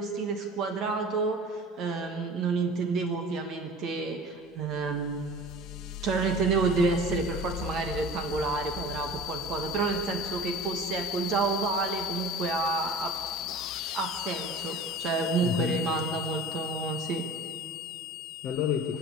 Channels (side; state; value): both; normal; correlation 0.40